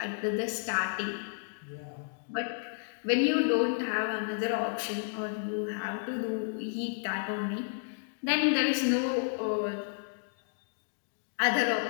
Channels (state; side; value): silent; right; digital silence